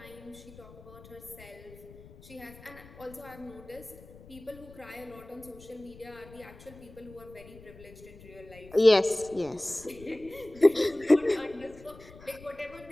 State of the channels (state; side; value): noise; left; rumble, 20 dB below the sound